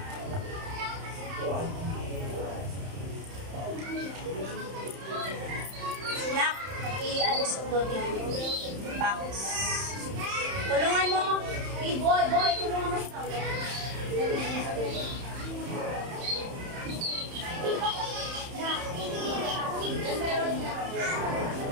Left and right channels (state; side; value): late; left; 31 ms